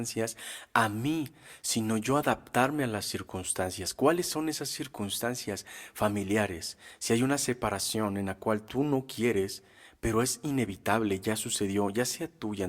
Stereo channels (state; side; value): identical; both; correlation 1.00